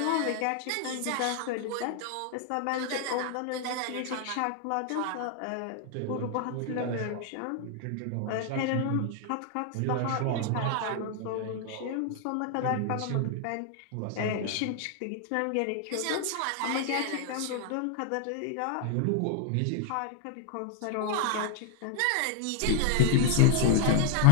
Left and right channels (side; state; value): both; different; correlation 0.00